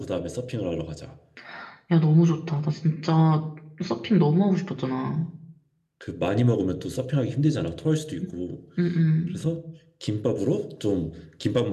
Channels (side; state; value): both; identical; correlation 1.00